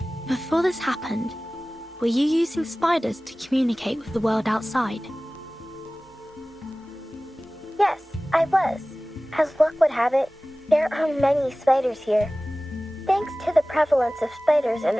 Before this happened, were you using spiders to communicate with the world outside? Yes, I was. As luck would have it, there are many spiders here. Thanks to the prevalence of spiders in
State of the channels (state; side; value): normal; both; correlation 0.98